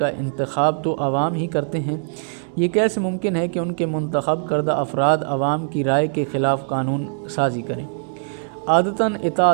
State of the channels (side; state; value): left; silent; 65 dB below the other